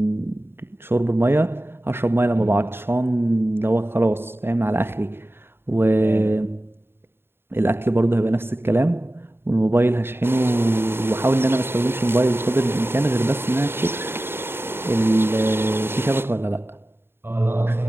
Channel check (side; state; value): left; late; 0.11 ms